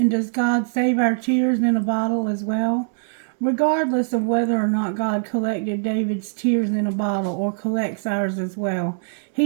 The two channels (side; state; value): left; silent; digital silence